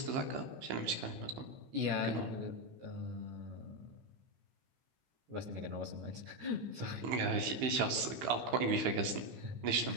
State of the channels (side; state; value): left; late; 15 ms